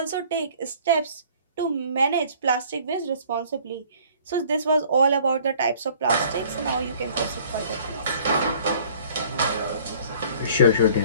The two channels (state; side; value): inverted; both; correlation -0.53